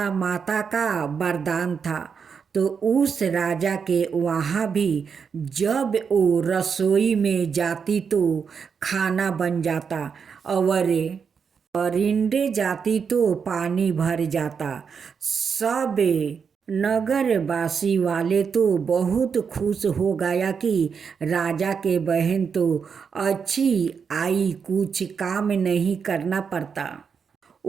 माता का वरदान था। तो उस राजा के वहाँ भी जब वो रसोई में जाती तो खाना बन जाता, और परिंदे जाती तो पानी भर जाता। सब नगरवासी वाले तो बहुत खुश हो गया कि राजा के बहन तो अच्छी आई, कुछ काम नहीं करना पड़ता।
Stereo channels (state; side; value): quieter; left; 6.3 dB